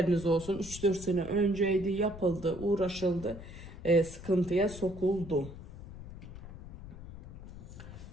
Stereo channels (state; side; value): noise; left; rumble, 13 dB below the sound